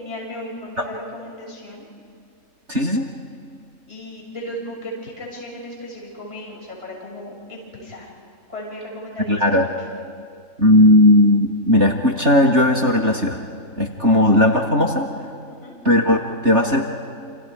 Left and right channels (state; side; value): late; left; 3.3 ms